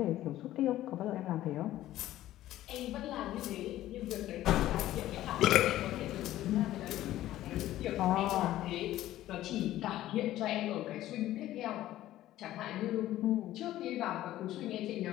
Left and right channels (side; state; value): right; quieter; 14.2 dB